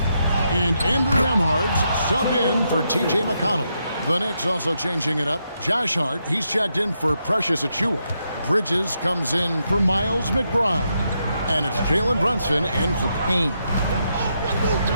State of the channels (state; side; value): inverted; both; correlation -0.81